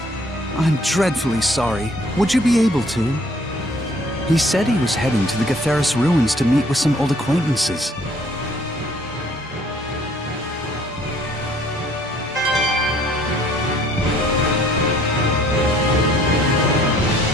I'm dreadfully sorry. Would you be able to? He said he was heading to the Gatheris ruins to meet with some old acquaintances.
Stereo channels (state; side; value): normal; both; correlation 0.59